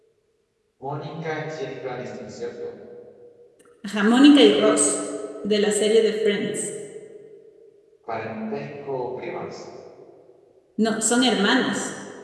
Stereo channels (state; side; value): identical; both; correlation 1.00